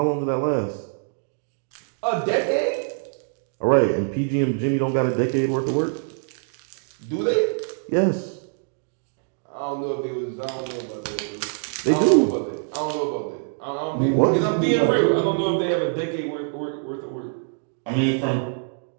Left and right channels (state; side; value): silent; left; digital silence